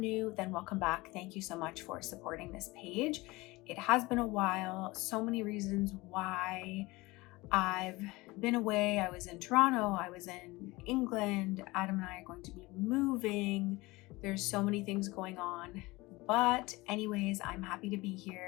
then welcome back. Thank you so much for supporting this page. It has been a while, so many reasons why I've been away. I was in Toronto, I was in England. Adam and I are going to be moving. There's so many things going on. But anyways, I'm happy to be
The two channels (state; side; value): quieter; right; 21.8 dB